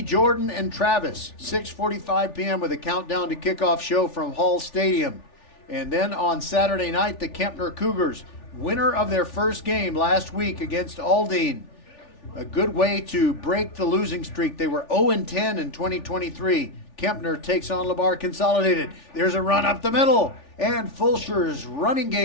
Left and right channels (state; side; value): late; right; 3.4 ms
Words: Jordan and Travis, 6:45 p.m. with a countdown to kickoff show from Hall Stadium. And then on Saturday night, the Kempner Cougars, winner of their first game last week against Aldine. A good way to break the losing streak. They were 0-10 in 2023. Kempner takes on Lamar Consolidated. There's a run up the middle. And Fulshear's running